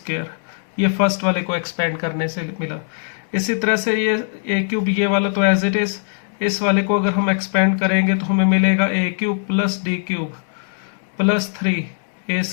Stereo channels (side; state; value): right; silent; digital silence